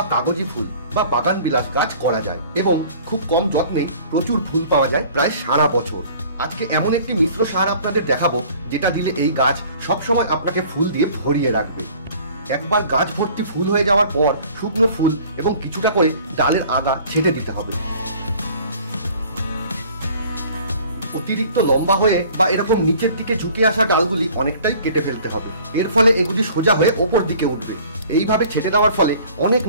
কাগজি ফুল বা বাগান বিলাস গাছ করা যায় এবং খুব কম যত্নে প্রচুর ফুল পাওয়া যায় প্রায় সারা বছর। আজকে এমন একটি মিশ্র সার আপনাদের দেখাবো যেটা দিলে এই গাছ সবসময় আপনাকে ফুল দিয়ে ভরিয়ে রাখবে। একবার গাছ ভর্তি ফুল হয়ে যাওয়ার পর শুকনো ফুল এবং কিছুটা করে ডালের আগা ছেটে দিতে হবে। অতিরিক্ত লম্বা হয়ে বা এরকম নিচের দিকে ঝুঁকে আসা ডালগুলি অনেকটাই কেটে ফেলতে হবে, এর ফলে এগুলি সোজা হয়ে ওপর দিকে উঠবে। এইভাবে ছেটে দেওয়ার ফলে অনেক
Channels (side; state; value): both; inverted; correlation -0.50